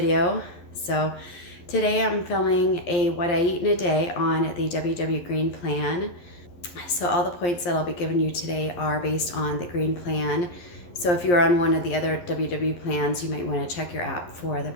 So today I'm filming a what I eat in a day on the WW Green Plan. So all the points that I'll be giving you today are based on the Green Plan. So if you're on one of the other WW plans, you might want to check your app for the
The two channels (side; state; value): right; late; 11 ms